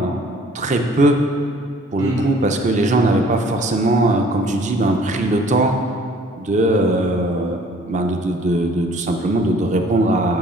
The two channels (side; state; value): both; normal; correlation 0.55